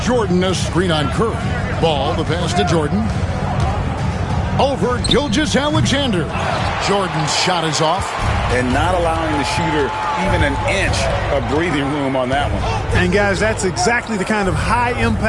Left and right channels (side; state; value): both; identical; correlation 1.00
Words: Jordan, a screen on Curry. Ball, the pass to Jordan. Over Gilgeous-Alexander. Jordan's shot is off. And not allowing the shooter even an inch of breathing room on that one. And, guys, that's exactly the kind of